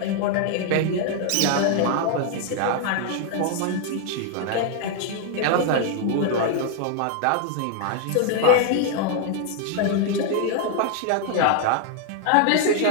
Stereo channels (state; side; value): different; both; correlation 0.00